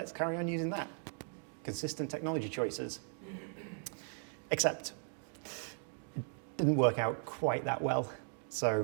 carry on using that. Consistent technology choices. Except it didn't work out quite that well.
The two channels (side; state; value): left; silent; 53 dB below the other